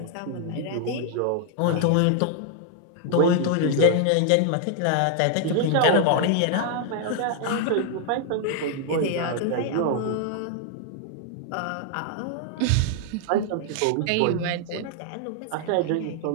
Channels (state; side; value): different; both; correlation 0.00